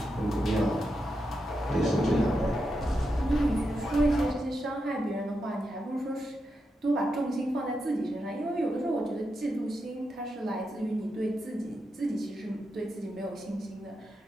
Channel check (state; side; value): normal; both; correlation 0.86